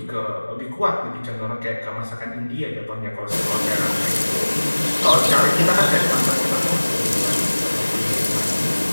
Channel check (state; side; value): inverted; both; correlation -1.00